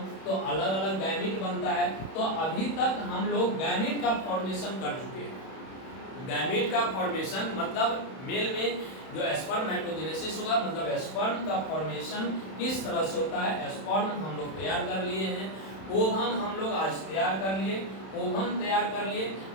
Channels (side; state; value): right; late; 31 ms